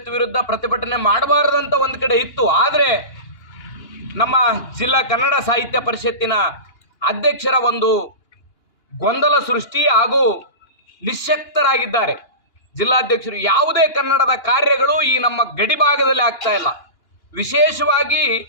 ವಿರುದ್ಧ ಪ್ರತಿಭಟನೆ ಮಾಡಬಾರದಂತ ಒಂದು ಕಡೆ ಇತ್ತು. ಆದರೆ ನಮ್ಮ ಜಿಲ್ಲಾ ಕನ್ನಡ ಸಾಹಿತ್ಯ ಪರಿಷತ್ತಿನ ಅಧ್ಯಕ್ಷರ ಒಂದು ಗೊಂದಲ ಸೃಷ್ಟಿ ಹಾಗೂ ನಿಶ್ಶಕ್ತರಾಗಿದ್ದಾರೆ ಜಿಲ್ಲಾಧ್ಯಕ್ಷರು. ಯಾವುದೇ ಕನ್ನಡದ ಕಾರ್ಯಗಳು ಈ ನಮ್ಮ ಗಡಿಭಾಗದಲ್ಲಿ ಆಗ್ತಾ ಇಲ್ಲ. ವಿಶೇಷವಾಗಿ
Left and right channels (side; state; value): right; late; 2.9 ms